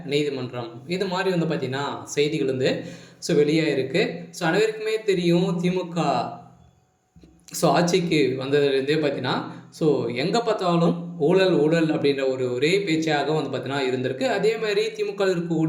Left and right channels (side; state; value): both; identical; correlation 1.00